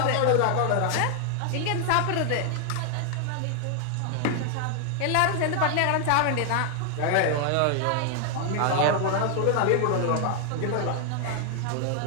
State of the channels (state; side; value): different; both; correlation 0.00